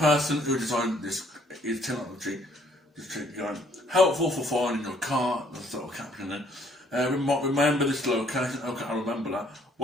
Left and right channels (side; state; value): both; normal; correlation 0.64